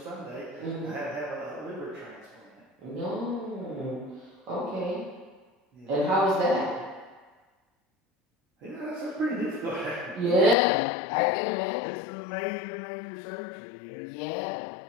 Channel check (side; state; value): right; drops out; at 10.6 s